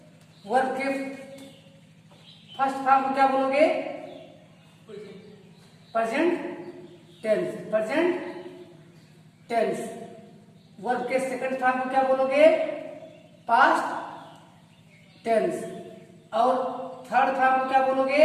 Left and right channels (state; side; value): identical; both; correlation 1.00